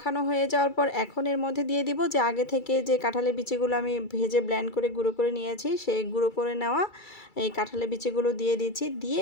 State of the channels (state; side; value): late; right; 2.3 ms